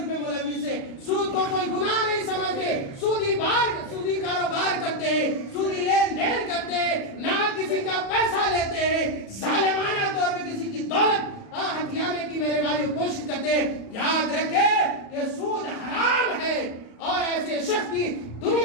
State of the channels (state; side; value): late; right; 37 ms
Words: میں ملوث ہیں، سود کو کوئی گناہ نہیں سمجھتے، سودی کاروبار کرتے ہیں، سودی لین دین کرتے ہیں، نہ کسی کا پیسہ لیتے ہیں، ظالمانہ طور پہ کسی کی دولت ہتھیانے کی میرے بھائیوں کوشش کرتے ہیں۔ یاد رکھیں کہ سود حرام ہے اور ایسے شخص کی